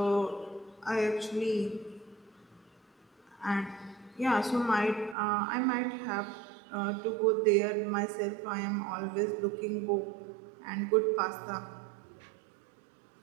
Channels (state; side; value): drops out; left; at 5.2 s